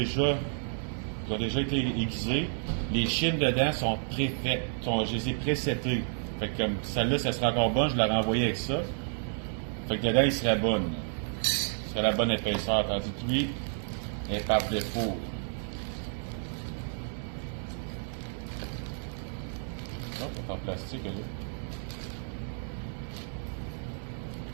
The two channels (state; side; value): silent; left; digital silence